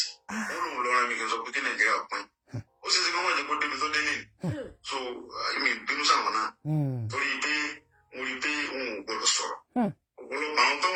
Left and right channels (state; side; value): identical; both; correlation 1.00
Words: wọ́n lòun lọ́ra mi kì í sọ pé kí Nàìjíríà pín ó sì ṣe kí wọ́n jẹ́ kó débi tó dé nìyí so èmi bínú sáwọn náà torí pé mo rí pé òun ò gbọdọ̀ sọ̀rọ̀ ọ̀pọ̀lọpọ̀ àwọn tó